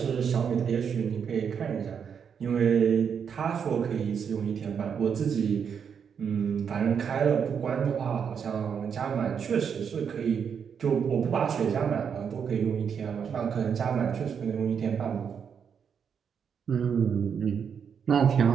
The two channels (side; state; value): left; quieter; 7.1 dB